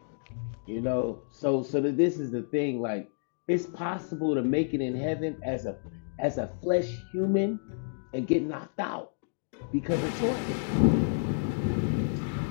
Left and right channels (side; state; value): right; silent; digital silence